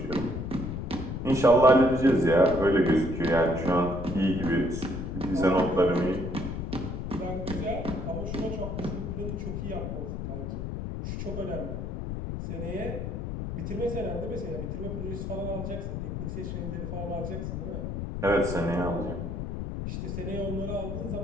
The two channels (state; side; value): noise; left; rumble, 4 dB below the sound